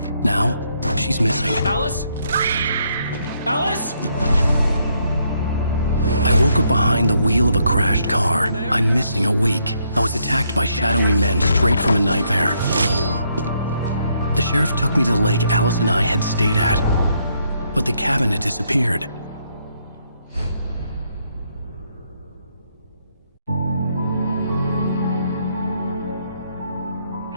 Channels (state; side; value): inverted; both; correlation -0.74